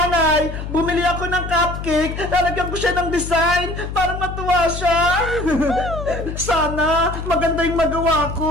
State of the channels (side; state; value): left; noise; hum, 7 dB below the sound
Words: Bumili ako ng cupcake, lalagyan ko siya ng design para matuwa siya. Sana maganda yung magawa